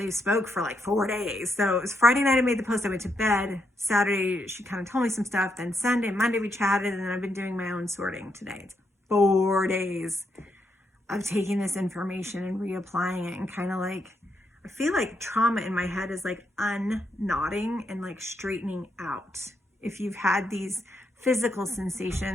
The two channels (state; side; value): normal; both; correlation 0.79